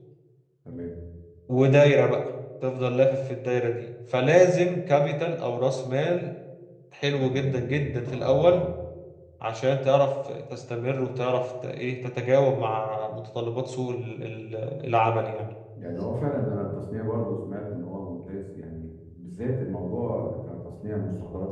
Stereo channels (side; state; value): both; identical; correlation 1.00